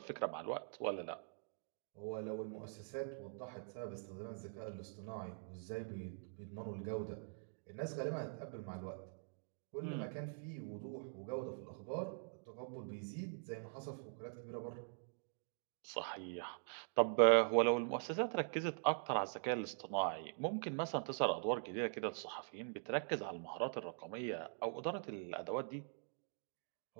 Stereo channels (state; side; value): silent; left; digital silence